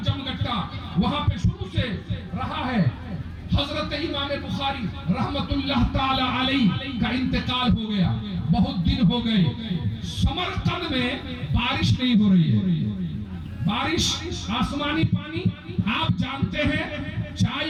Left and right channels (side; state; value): both; identical; correlation 1.00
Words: جمگٹا وہاں پہ شروع سے رہا ہے. حضرت امام بخاری رحمت اللہ تعالی علیہ کا انتقال ہو گیا, بہت دن ہو گئے. سمرقند میں بارش نہیں ہو رہی ہے. بارش, آسمانی پانی, آپ جانتے ہیں چائے